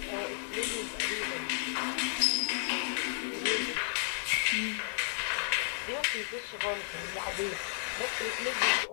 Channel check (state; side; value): silent; right; digital silence